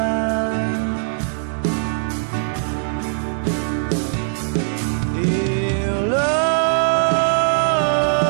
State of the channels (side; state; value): left; silent; digital silence